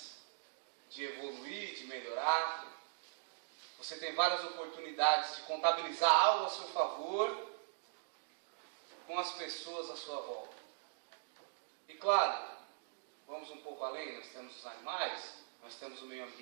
de evoluir, de melhorar. Você tem várias oportunidades de contabilizar algo a seu favor com as pessoas à sua volta. E claro, vamos um pouco além, nós temos os animais, nós temos o meio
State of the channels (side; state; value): left; silent; digital silence